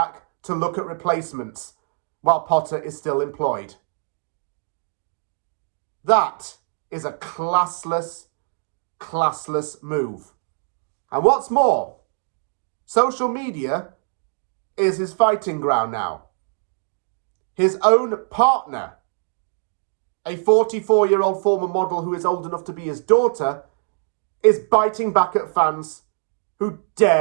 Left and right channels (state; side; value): silent; left; 64 dB below the other